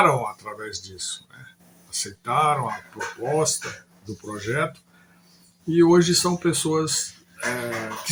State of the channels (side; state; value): both; identical; correlation 1.00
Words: através disso, né? Aceitaram a proposta do projeto e hoje são pessoas que